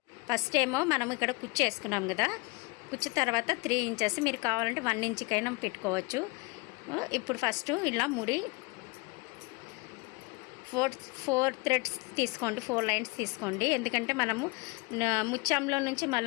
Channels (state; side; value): quieter; right; 27.2 dB